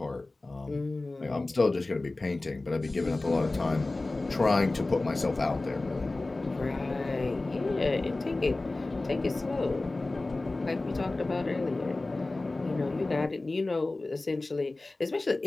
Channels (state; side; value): quieter; right; 3.1 dB